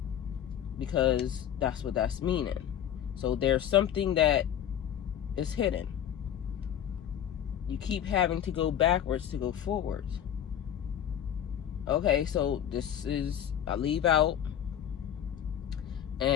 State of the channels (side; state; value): right; quieter; 9.9 dB